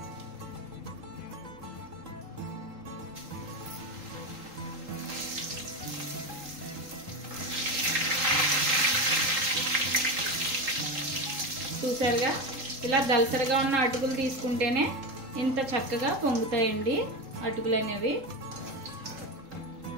చూసారుగా, ఇలా దలసరగా ఉన్న అటుకులు తీసుకుంటేనే ఇంత చక్కగా పొంగుతాయండి అటుకులు అనేవి.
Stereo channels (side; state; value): left; late; 3.8 ms